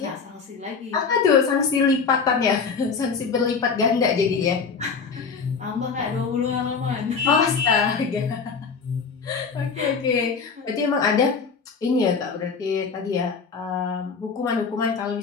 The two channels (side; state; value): right; quieter; 5.4 dB